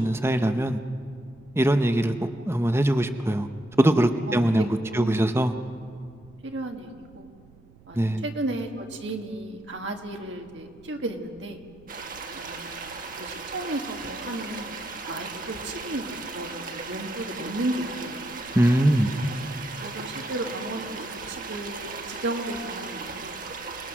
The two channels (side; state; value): right; noise; rumble, 25 dB below the sound